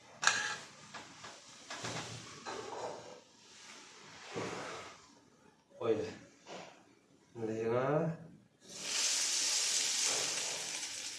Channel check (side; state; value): both; identical; correlation 1.00